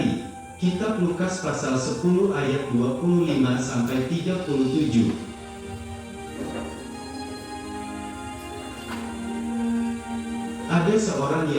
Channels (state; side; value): identical; both; correlation 1.00